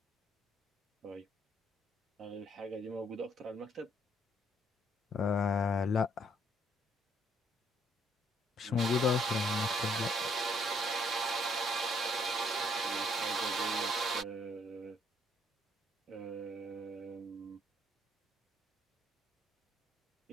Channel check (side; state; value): both; normal; correlation 0.68